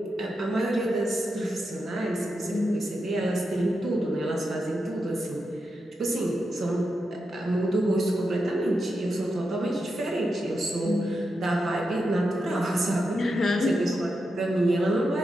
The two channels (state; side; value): normal; both; correlation 0.87